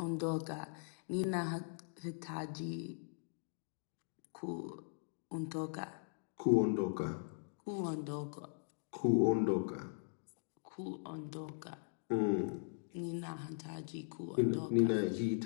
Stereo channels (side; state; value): right; silent; digital silence